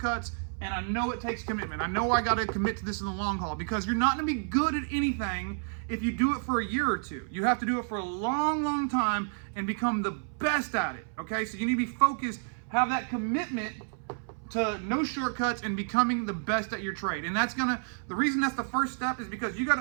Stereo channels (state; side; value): silent; left; 58 dB below the other